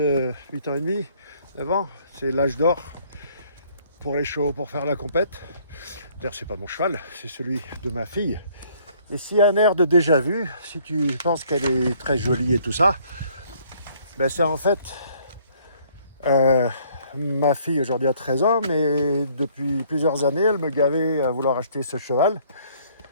8 ans et demi, 9 ans, c'est l'âge d'or pour les chevaux, pour faire la compète. D'ailleurs, c'est pas mon cheval, c'est celui de ma fille. Et s'il y a un air de déjà vu, si tu penses qu'elle est très jolie et tout ça, ben c'est en fait ma fille aujourd'hui a 13 ans, mais depuis plusieurs années, elle me gavait à vouloir acheter ce cheval.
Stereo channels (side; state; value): both; inverted; correlation -0.61